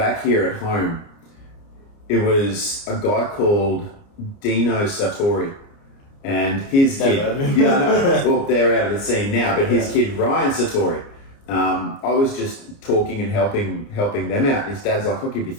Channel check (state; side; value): late; right; 29 ms